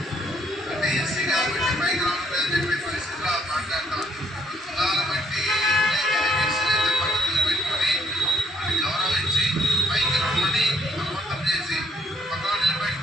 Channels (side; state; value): both; normal; correlation 0.67